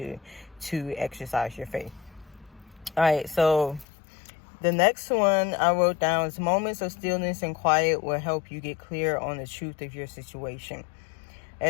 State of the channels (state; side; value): drops out; right; at 3.9 s